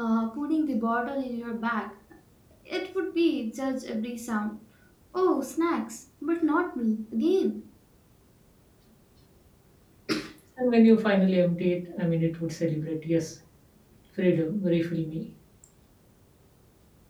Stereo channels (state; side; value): identical; both; correlation 1.00